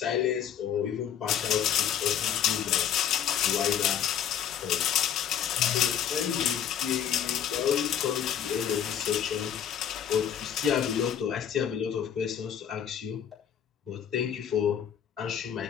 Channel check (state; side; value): quieter; right; 9.1 dB